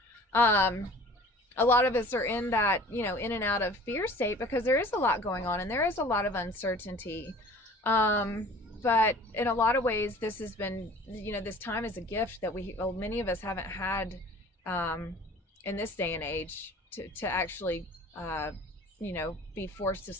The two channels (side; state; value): both; normal; correlation 0.46